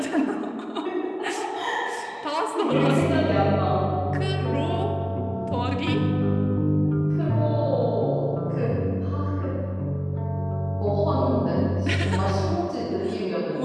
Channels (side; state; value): both; identical; correlation 1.00